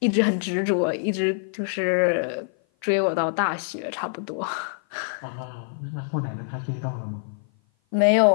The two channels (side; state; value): right; silent; 55 dB below the other